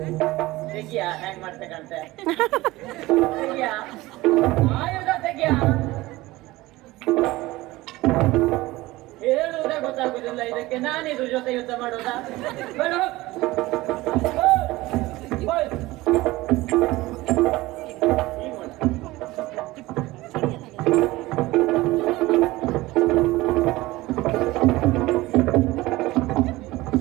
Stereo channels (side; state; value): left; quieter; 19.1 dB